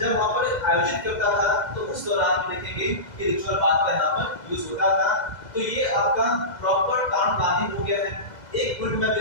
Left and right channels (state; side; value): late; right; 2.0 ms